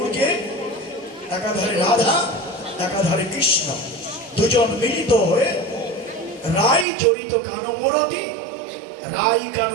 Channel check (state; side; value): drops out; left; at 6.9 s